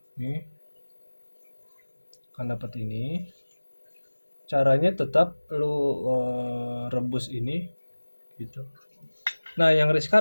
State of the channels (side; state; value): both; inverted; correlation -1.00